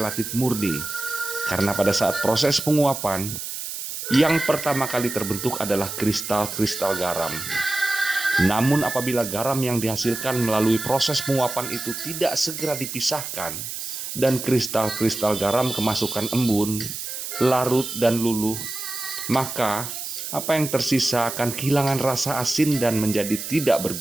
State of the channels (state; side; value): noise; right; hiss, 7 dB below the sound